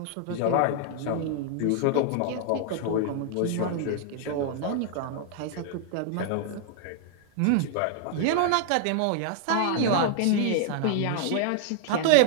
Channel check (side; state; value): both; different; correlation 0.00